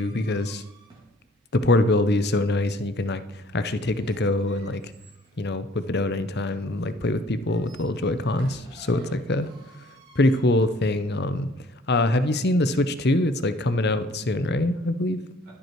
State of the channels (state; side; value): normal; both; correlation 0.57